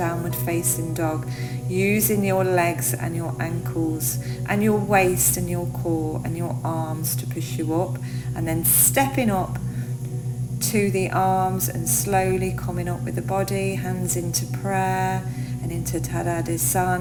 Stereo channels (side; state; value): both; identical; correlation 1.00